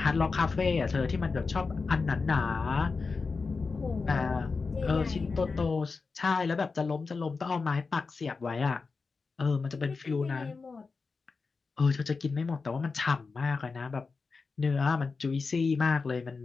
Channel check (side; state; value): right; quieter; 4.5 dB